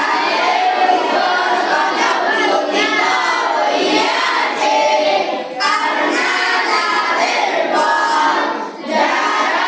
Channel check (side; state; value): both; identical; correlation 1.00